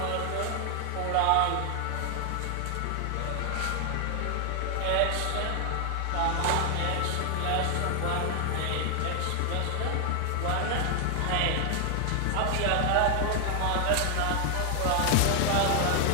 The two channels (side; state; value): both; different; correlation 0.00